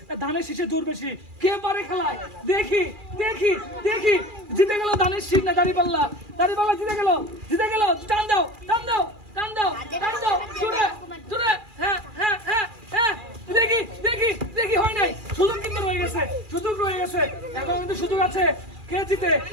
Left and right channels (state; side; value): late; left; 2.4 ms